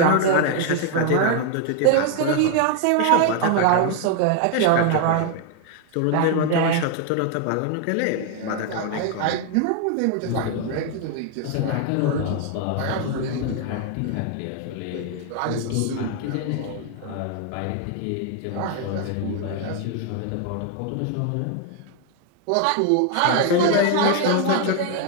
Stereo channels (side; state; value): both; different; correlation 0.00